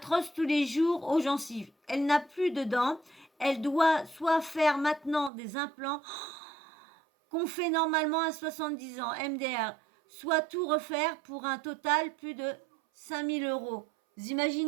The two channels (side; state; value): left; drops out; at 5.3 s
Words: tous les jours aux gencives. Elle n'a plus de dents. Elle doit soit faire maintenant des implants qu'on fait normalement à 70 ans, MDR, soit tout refaire pour un total plus de 5 000 euros. Vous